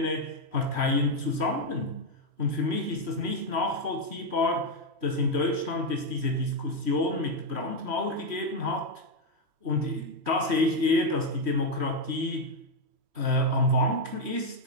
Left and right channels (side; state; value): left; late; 3.1 ms